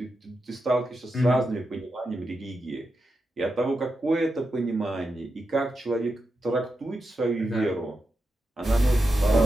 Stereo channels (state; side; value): normal; both; correlation 0.88